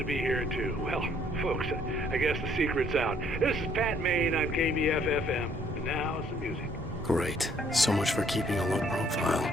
be here, too. Well, folks, I guess the secret's out. This is Pat Maine on KBFFM. And now, some music. Great. So much for keeping a low profile.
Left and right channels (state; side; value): normal; both; correlation 0.64